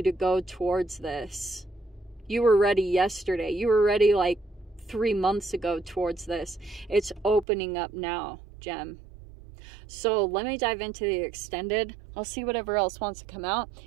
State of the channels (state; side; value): drops out; left; at 7.5 s